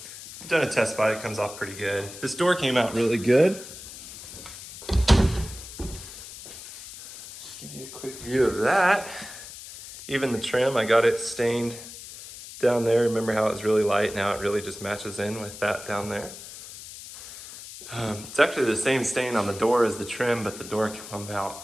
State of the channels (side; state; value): left; noise; hiss, 14 dB below the sound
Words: I've done a test spot, it comes off pretty good. This door came out really good. Just give you a quick view of that. Even the trim, I got it stained down there. Remember how it was really light? Now it really just matches in with that down there. It's actually the same stain on the door as the trim, but the door came out